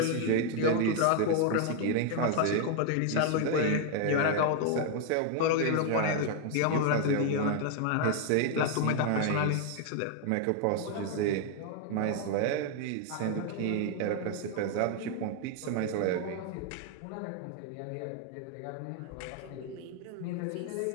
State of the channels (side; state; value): both; different; correlation 0.00